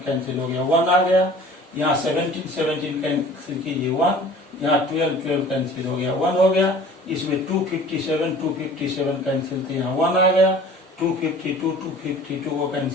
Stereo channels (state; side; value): normal; both; correlation 0.45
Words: कैंसिल हो गया 1 आ गया, यहाँ 17 कैंसिल कीजिए 1, यहाँ 12 कैंसिल हो गया 1 हो गया, इसमें 257 कैंसिल थे, यहाँ 1 आ गया, 252 को